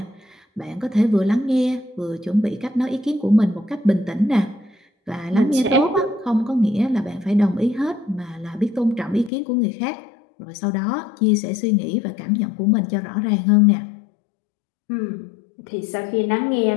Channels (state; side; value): drops out; right; at 9.3 s